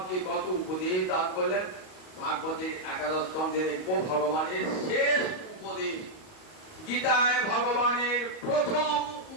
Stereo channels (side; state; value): right; late; 38 ms